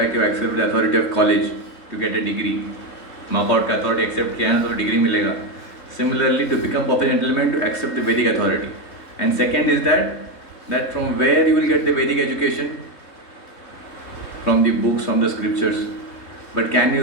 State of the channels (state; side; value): late; right; 3.7 ms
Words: you accept the authority of college to get a degree. Knockout का authority accept किया ना तो degree मिलेगा. Similarly, to become perfect gentleman, to accept the Vedic authority. And second is that from where you will get the Vedic education? From the books, from the scriptures. But can